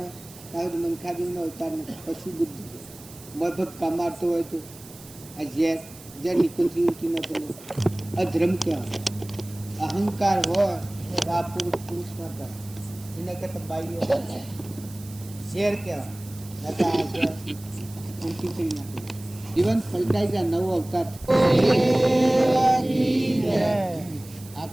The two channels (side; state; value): right; noise; hiss, 19 dB below the sound